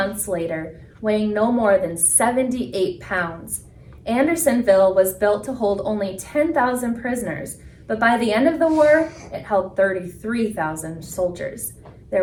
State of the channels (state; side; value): identical; both; correlation 1.00